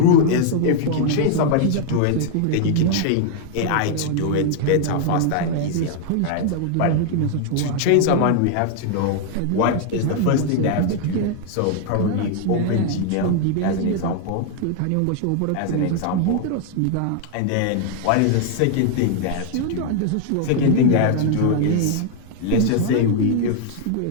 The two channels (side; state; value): both; different; correlation 0.00